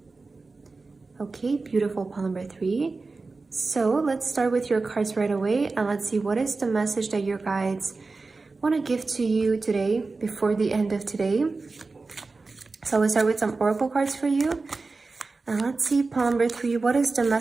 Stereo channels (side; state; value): left; quieter; 3.8 dB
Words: Okay, beautiful pile number 3. So let's start with your cards right away. And let's see what is the message that your guides want to give to you today before the end of today. So let's start with some oracle cards for you. And let's see, pile number 3, what is the